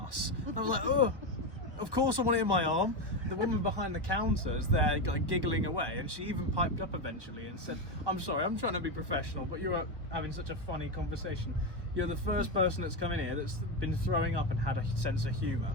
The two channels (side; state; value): left; late; 1.1 ms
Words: And I was like, oh, of course I want it in my arm. The woman behind the counter is there like giggling away, and she even piped up eventually and said, I'm sorry, I'm trying to be professional, but you're having such a funny conversation. You're the first person that's come in here that's been throwing up and had a sense of humour.